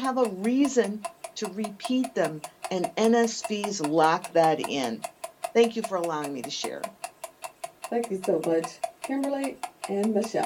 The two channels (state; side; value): identical; both; correlation 1.00